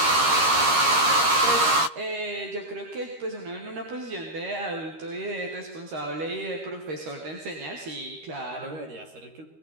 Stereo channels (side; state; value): left; late; 13 ms